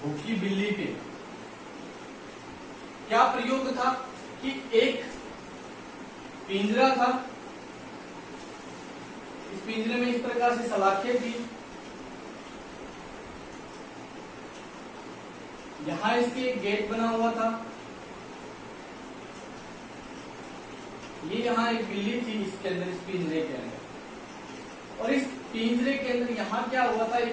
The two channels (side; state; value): both; identical; correlation 1.00